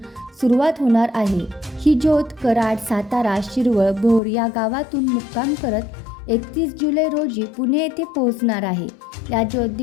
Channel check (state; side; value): drops out; right; at 4.2 s